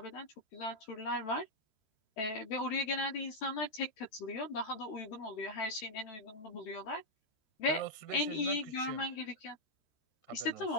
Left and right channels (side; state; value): right; late; 13 ms